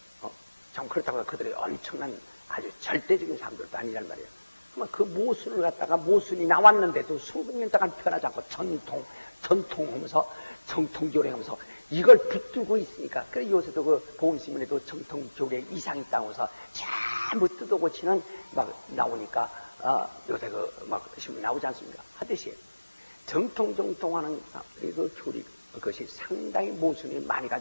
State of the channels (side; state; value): both; inverted; correlation -1.00